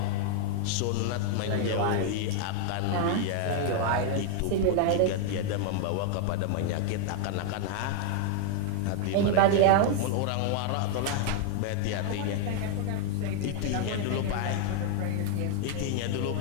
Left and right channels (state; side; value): different; both; correlation 0.00